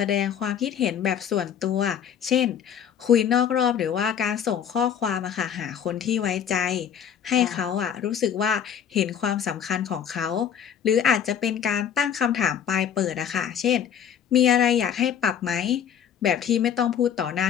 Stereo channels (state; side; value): quieter; right; 8.5 dB